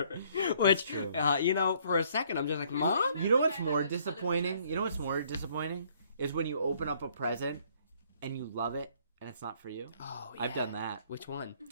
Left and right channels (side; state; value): both; inverted; correlation -0.63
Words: which, for a second I'm just like, Mom? You know what's more disappointing? Is when you open up a present and you love it and it's not for you. Oh, yeah. I've done that. Which one?